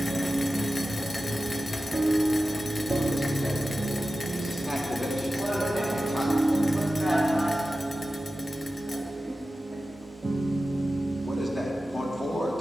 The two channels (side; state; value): both; normal; correlation 0.94